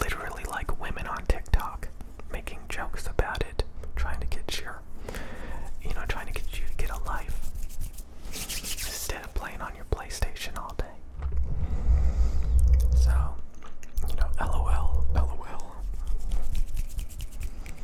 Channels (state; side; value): identical; both; correlation 1.00